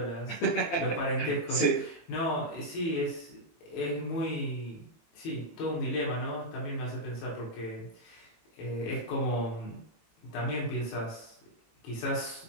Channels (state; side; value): late; right; 18 ms